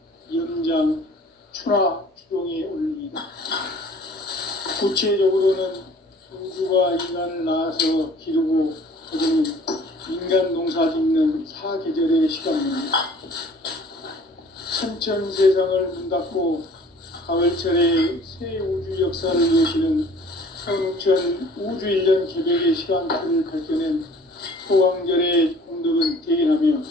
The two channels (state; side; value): normal; both; correlation 0.51